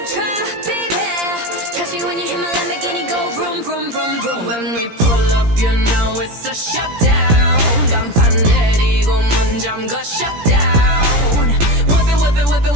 tried, baby. Catch me when you hit my Lamborghini, go vroom, vroom, vroom, vroom. When we pull up, you know it's a shutdown. 간판 내리고 문 잠가 shutdown. Whip it, whip it, whip it,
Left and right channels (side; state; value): left; late; 17 ms